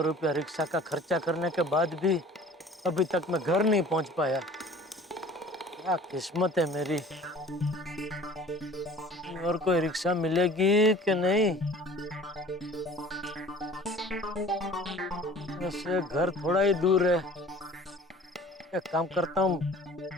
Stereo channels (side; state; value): both; normal; correlation 0.47